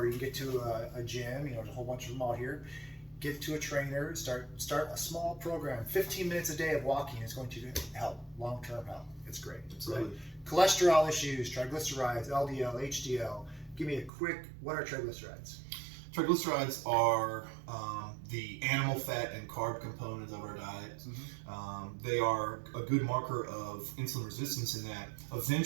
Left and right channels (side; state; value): left; drops out; at 14.1 s